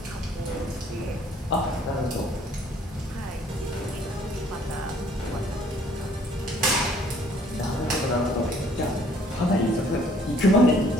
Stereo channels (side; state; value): both; normal; correlation 0.59